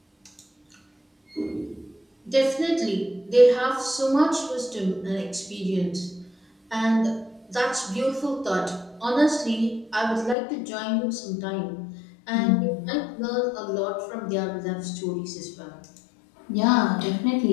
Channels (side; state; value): right; drops out; at 10.4 s